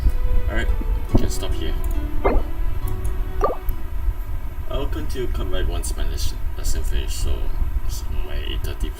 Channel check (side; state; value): both; identical; correlation 1.00